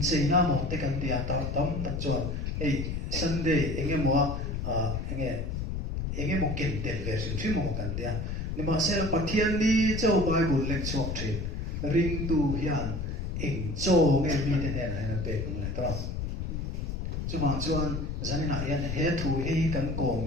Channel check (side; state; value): left; noise; rumble, 3 dB below the sound